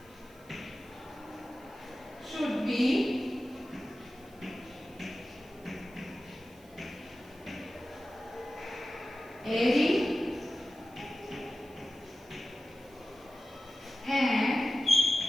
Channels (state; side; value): noise; right; hiss, 26 dB below the sound